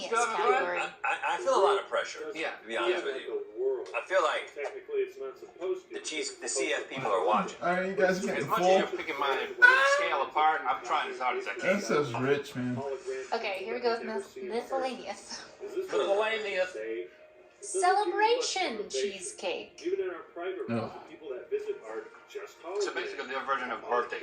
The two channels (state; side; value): identical; both; correlation 1.00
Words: Have fun. category. I feel a lot of pressure, Yeah. to be honest with you. I feel like the CF people are watching. Alright, you guys As getting much as full? you're picking my scale apart, I'm trying as hard as I can. That says rich, man. Okay, here we go with miscellaneous. Miscellaneous. Celebration cheesecake. No. So basically, their version of birthday